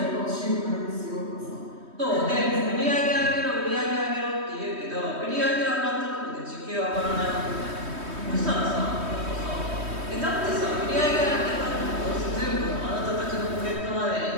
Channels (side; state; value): left; late; 3.2 ms